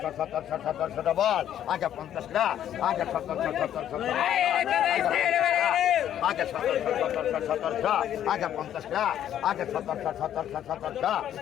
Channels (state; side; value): quieter; right; 10.7 dB